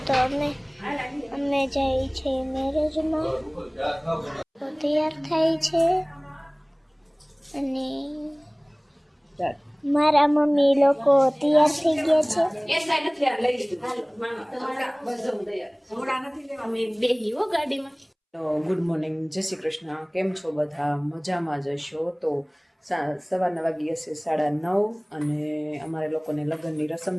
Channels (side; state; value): both; identical; correlation 1.00